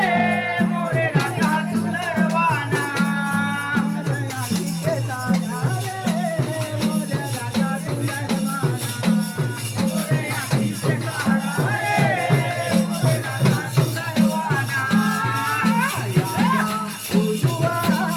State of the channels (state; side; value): identical; both; correlation 1.00